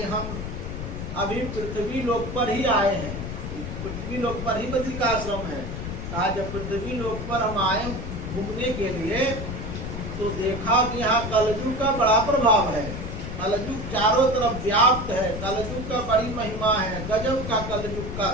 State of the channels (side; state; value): left; noise; rumble, 6 dB below the sound